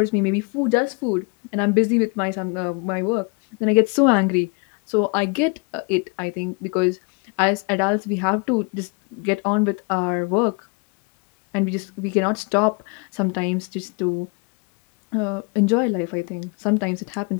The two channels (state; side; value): quieter; right; 31.9 dB